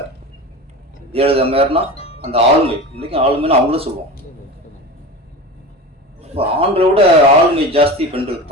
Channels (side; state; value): both; normal; correlation 0.30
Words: ஜெயலலிதா மேயர்னா அந்த ஆளுமை, இன்னைக்கும் ஆளுமைன்னு அவங்களும் சொல்லுவோம். இப்போ ஆண்களை விட ஆளுமை ஜாஸ்தி பெண்களுக்கு